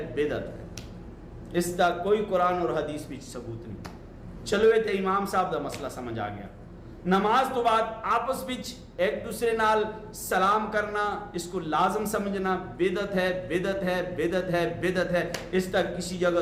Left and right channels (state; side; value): identical; both; correlation 1.00